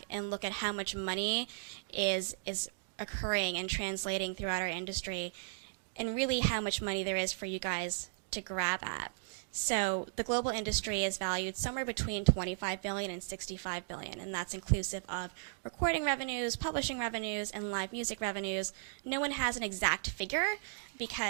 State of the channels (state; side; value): silent; left; digital silence